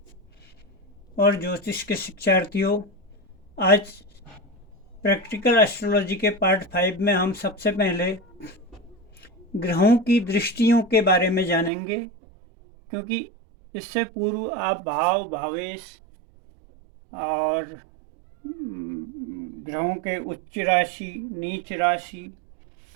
और ज्योतिष के शिक्षार्थियों, आज प्रैक्टिकल एस्ट्रोलॉजी के पार्ट 5 में हम सबसे पहले ग्रहों की दृष्टियों के बारे में जानेंगे, क्योंकि इससे पूर्व आप भाव, भावेश और ग्रहों के उच्च राशि, नीच राशि,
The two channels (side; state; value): left; drops out; at 11.7 s